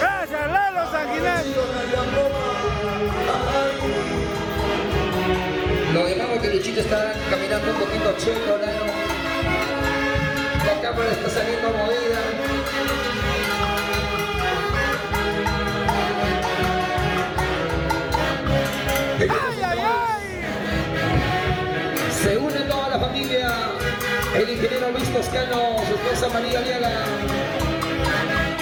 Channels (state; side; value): identical; both; correlation 1.00